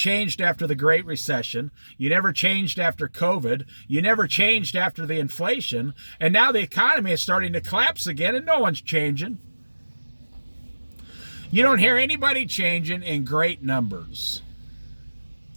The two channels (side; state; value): both; inverted; correlation -1.00